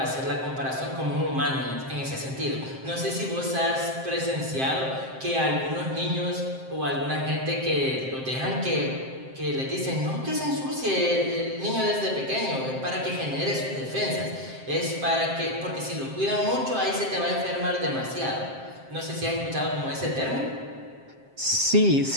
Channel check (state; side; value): late; left; 7.6 ms